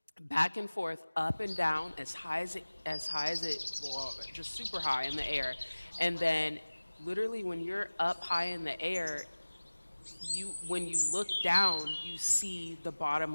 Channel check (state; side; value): inverted; both; correlation -1.00